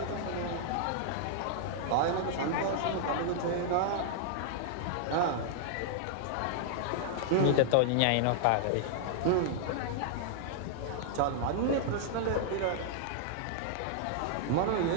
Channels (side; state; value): both; different; correlation -0.01